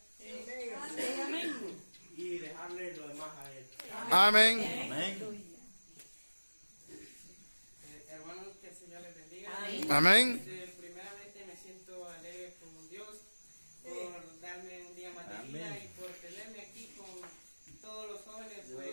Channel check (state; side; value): inverted; both; correlation -1.00